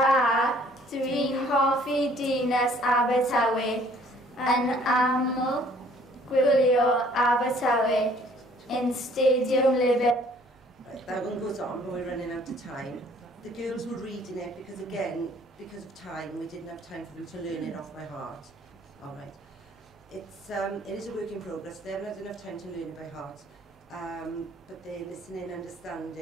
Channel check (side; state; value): both; normal; correlation 0.58